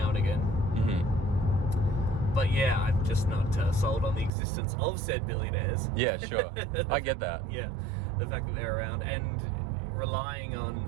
and again. Mm-hmm. But yeah, I'm just not sold on the existence of said billionaires. Yeah, sure. I get that. Yeah, the fact that they're around and relying on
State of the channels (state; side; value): drops out; left; at 4.3 s